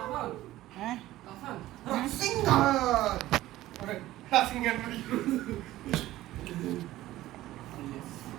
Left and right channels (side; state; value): left; quieter; 15.7 dB